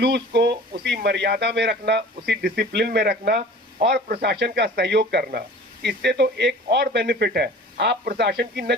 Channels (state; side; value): normal; both; correlation 0.43